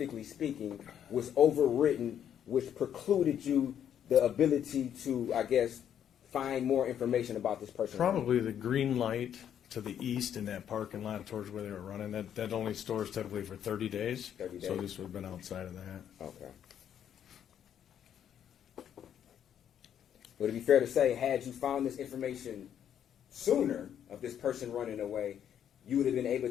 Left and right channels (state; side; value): quieter; right; 9.4 dB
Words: speaking, was overwritten, which precluded you the ability to, I guess, find more information about this person? Probably the green light to the east in that parking lot towards where they were running. That only stores typically for 30 days. 30 days. So this would have been outside of that. Okay. Would it be fair to say, had you found this information sooner of this person running away, you would have been able